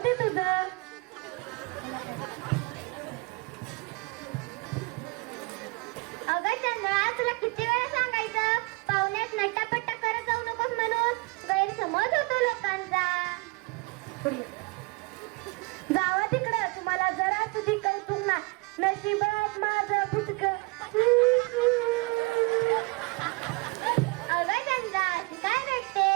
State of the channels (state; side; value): quieter; left; 26.9 dB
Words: तुझं. अगं चंद्रा, तुला किती वेळा सांगायचं पाहुण्यात नट्टापट्टा करत जाऊ नकोस म्हणून? गैरसमज होतो लोकांचा. जावा तिकडं, तुम्हाला जरा तुझी कौतुक ना. नशिबात माझं फुटक. अगं चंद्रा, अशी काय